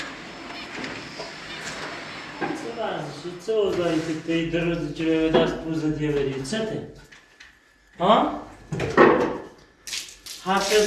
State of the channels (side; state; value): both; identical; correlation 1.00